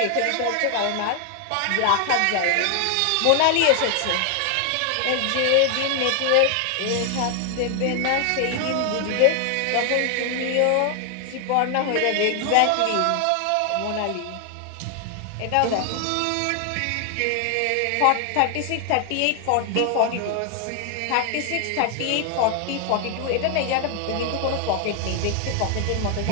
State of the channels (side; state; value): both; different; correlation 0.00